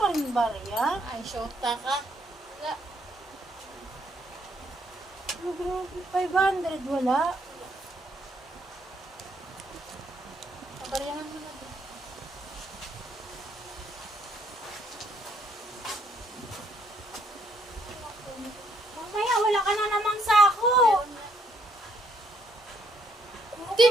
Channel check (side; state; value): both; normal; correlation 0.71